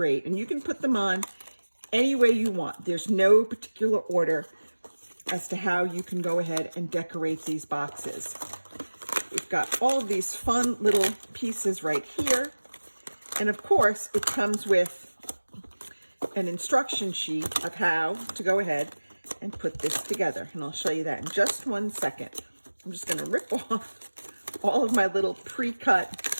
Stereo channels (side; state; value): both; inverted; correlation -1.00